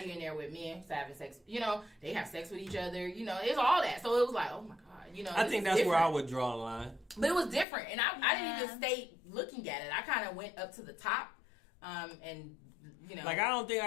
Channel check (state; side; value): drops out; right; at 7.7 s